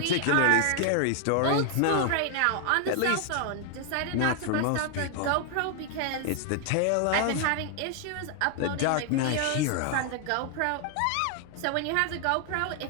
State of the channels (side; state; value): both; different; correlation 0.00